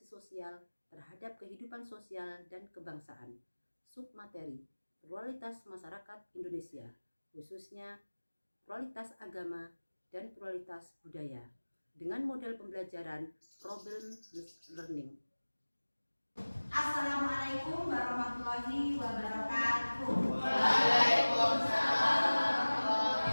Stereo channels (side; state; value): both; inverted; correlation -1.00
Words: sosial terhadap kehidupan sosial dan kebangsaan. Submateri, pluralitas masyarakat Indonesia, khususnya pluralitas agama dan pluralitas budaya, dengan model pembelajaran problem learning. Assalamualaikum warahmatullahi wabarakatuh. Waalaikumsalam.